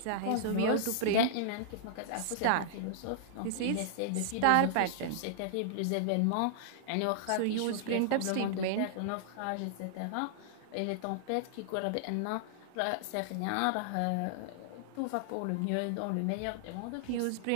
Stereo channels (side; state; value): both; different; correlation -0.01